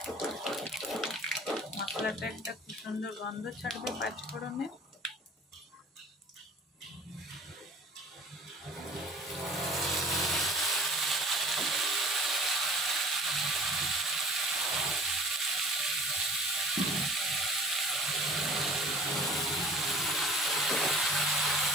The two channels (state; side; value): normal; both; correlation 0.47